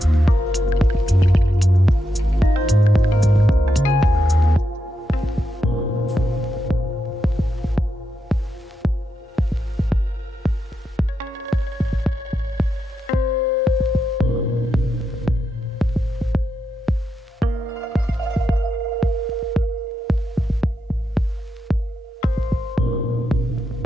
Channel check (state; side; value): normal; both; correlation 0.84